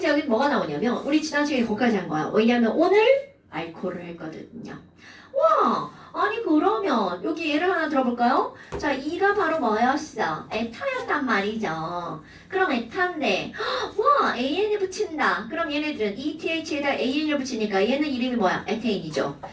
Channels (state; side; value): identical; both; correlation 1.00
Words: 여기 뭐가 나오냐면 우리 지난 시간에 거기까지 한 거야. 왜냐면 오늘 알코올을 했거든요. 와, 아니 그러면 여기 예를 하나 들어볼까요? 자, 이가 바로 뭐였어? 에타였단 말이죠. 그럼 에타인데 와, AN을 붙인다. 그럼 얘네들은 ETH에다 AN을 붙이니까 얘는 이름이 뭐야? 에테인이죠.